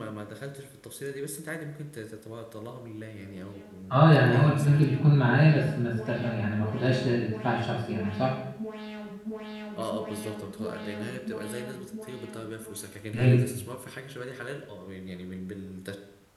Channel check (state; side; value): identical; both; correlation 1.00